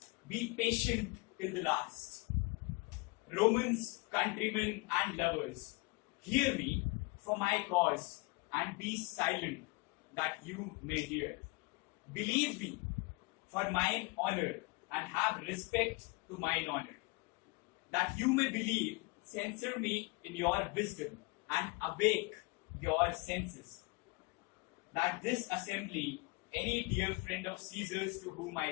"Be patient till the last. Romans, countrymen and lovers, hear me for my cause and be silent that you may hear. Believe me for mine honor and have respect to mine honor, that you may believe. Censor me in your wisdom and awake your senses, that this assembly, any dear friend of Caesar's to whom I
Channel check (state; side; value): quieter; right; 25.9 dB